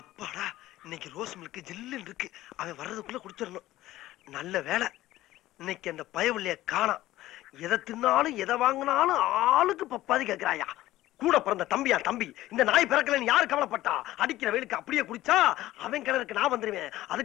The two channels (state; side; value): quieter; right; 15.5 dB